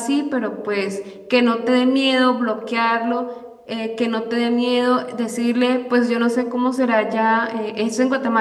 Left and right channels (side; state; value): both; identical; correlation 1.00